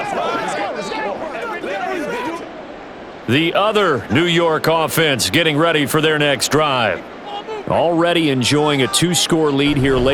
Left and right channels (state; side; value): identical; both; correlation 1.00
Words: The other New York offense getting ready for their next drive. Already enjoying a 2-score lead here